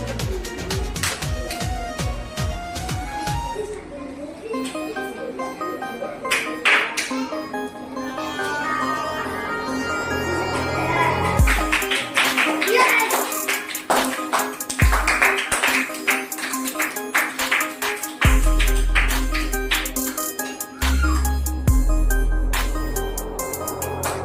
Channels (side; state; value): both; identical; correlation 1.00